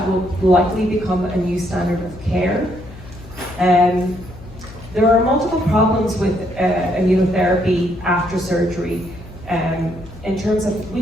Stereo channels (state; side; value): noise; left; hum, 17 dB below the sound